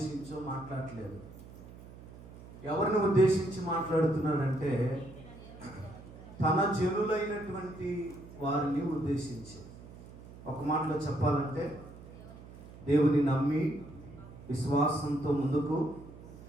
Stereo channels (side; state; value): right; noise; hum, 17 dB below the sound